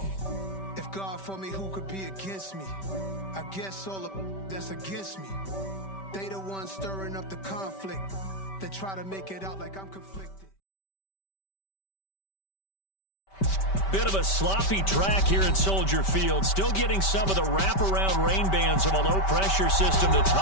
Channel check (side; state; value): right; late; 5.2 ms